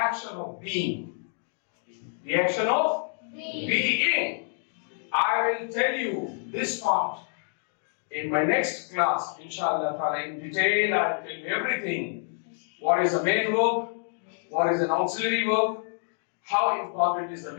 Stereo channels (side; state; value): right; silent; 60 dB below the other